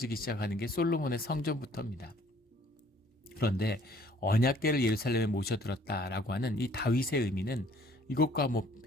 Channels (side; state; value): both; normal; correlation 0.58